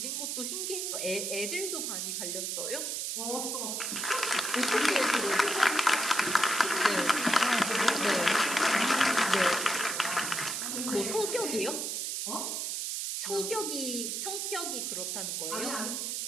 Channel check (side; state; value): right; noise; hiss, 2 dB below the sound